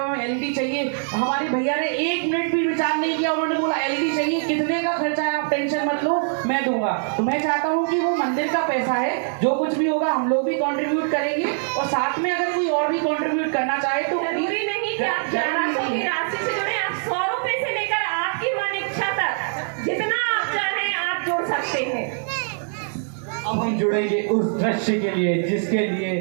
हमें एलईडी चाहिए। हमारे भैया ने 1 मिनट भी विचार नहीं किया, उन्होंने बोला एलईडी चाहिए, कितने का खर्चा है आप टेंशन मत लो, मैं दूंगा। तो मैं चाहता हूँ कि वो मंदिर का पैसा है, जो कुछ भी होगा हम लोग भी कंट्रीब्यूट करेंगे और साथ में अगर कोई और भी कंट्रीब्यूट करना चाहे तो जरूरी नहीं कि आप 1100 की राशि से जुड़े, आप 100 रुपए से लेकर आपकी मन इच्छा तक जितना आप चाहें आप जोड़ सकते हैं। अब हम जुड़ेंगे उस दृश्य के लिए जिसके लिए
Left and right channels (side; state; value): left; silent; 63 dB below the other